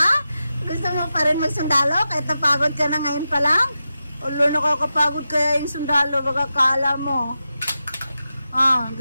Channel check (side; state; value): both; inverted; correlation -0.90